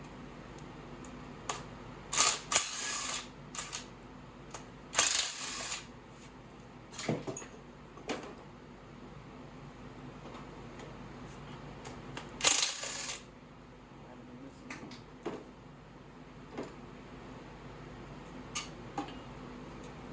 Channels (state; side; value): identical; both; correlation 1.00